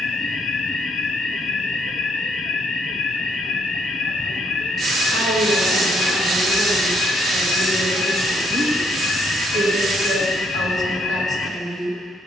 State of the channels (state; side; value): normal; both; correlation 0.70